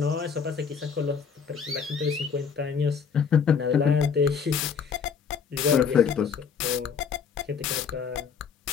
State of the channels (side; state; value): right; quieter; 6.3 dB